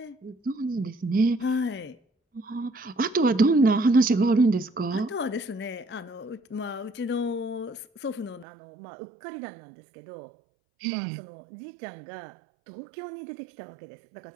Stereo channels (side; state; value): left; drops out; at 8.5 s